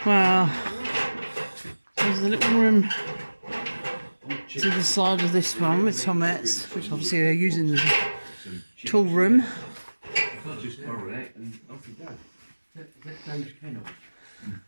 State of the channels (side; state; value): both; inverted; correlation -1.00